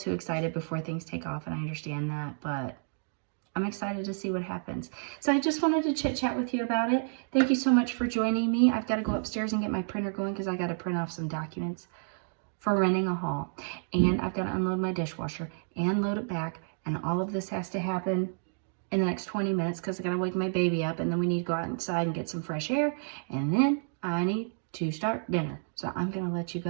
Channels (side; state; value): left; silent; digital silence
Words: excited before things take off, and I understand that, but I'm excited to see what happens. So I just wanted to chit chat with you about it. Thank you so much for joining me. I've got to go upstairs and get my printer going because I got to print off some documents for renting a hall. And I've got to unload my dishwasher and load it back. And all of this has to happen in the next 20 minutes because I got to wake my baby up, and then we need to go outside and get some fresh air. And then I need to start dinner. So I'm going to let you